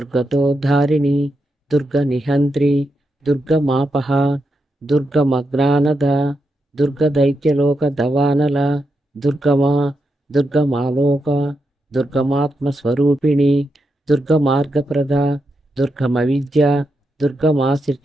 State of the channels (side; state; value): both; normal; correlation 0.85